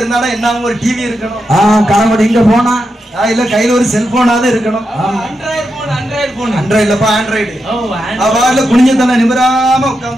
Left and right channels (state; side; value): normal; both; correlation 0.86